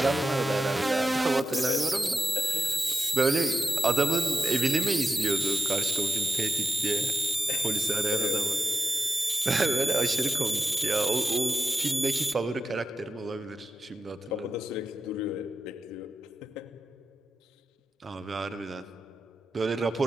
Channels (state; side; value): normal; both; correlation 0.91